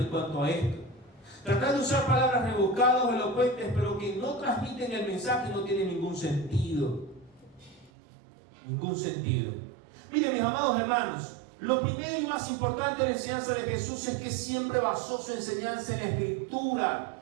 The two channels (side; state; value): left; drops out; at 7.9 s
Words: cuanto a esto. Tratar de usar palabras rebuscadas o elocuentes, pero que no transmiten el mensaje, no tiene ningún sentido. Ningún sentido. Miren, mis amados hermanos, lo primero y más importante de la enseñanza de Jesús es que siempre basó su enseñanza en la Escritura.